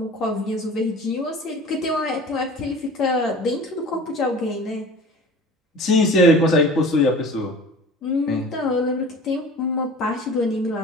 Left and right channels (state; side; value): normal; both; correlation 0.42